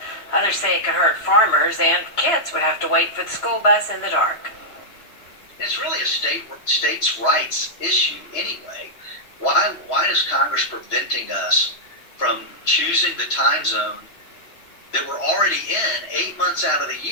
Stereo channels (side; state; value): right; late; 3.0 ms